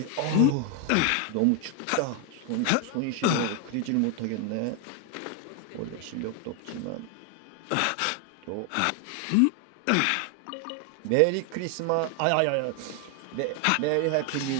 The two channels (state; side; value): different; both; correlation 0.00